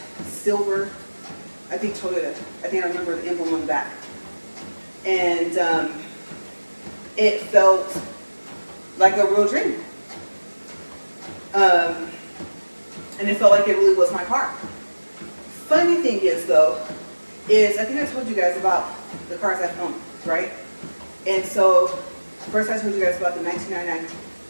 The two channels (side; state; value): both; inverted; correlation -1.00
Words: silver, I think Toyota. I think I remember the emblem on the back. And it felt like a real dream. And it felt like it really was my car. Funny thing is though, is I think I told you guys about the cars I've owned, right? And so first I told you guys about the